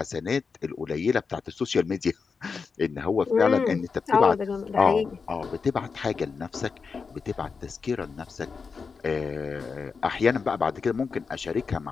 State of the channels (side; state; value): right; quieter; 5.2 dB